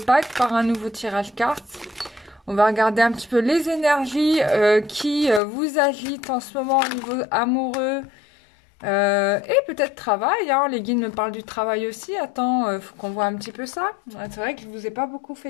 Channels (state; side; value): drops out; right; at 5.4 s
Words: par un nouveau tirage carte. On va regarder un petit peu les énergies qui vous agitent en ce moment au niveau amoureux et peut-être travail, hein. Les guides me parlent du travail aussi. Attends, faut qu'on voit un petit peu ça. C'est vrai que je vous ai pas beaucoup